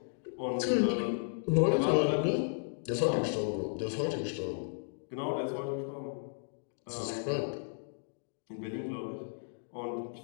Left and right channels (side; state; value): right; silent; digital silence